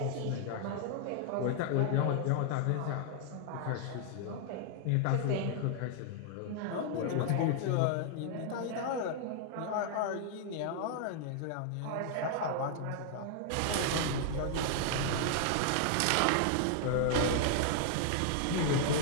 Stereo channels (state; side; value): different; both; correlation 0.00